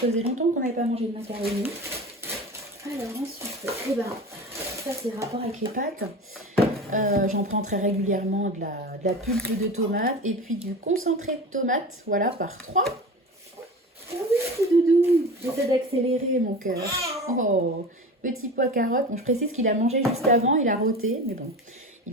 faisait longtemps qu'on n'avait pas mangé de macaronis. Alors ensuite, ça c'est rapport avec les pâtes. J'en prends très régulièrement de la pulpe de tomate et puis du concentré de tomate, voilà, par 3. Oh oui, doudou, j'essaie d'accélérer mon cœur. Oh, petit pois carotte. Bon, je précise qu'il a mangé juste avant, il a roté, mais bon,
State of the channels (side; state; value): both; normal; correlation 0.32